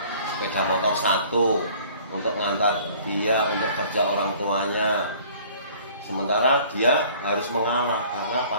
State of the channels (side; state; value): both; inverted; correlation -0.52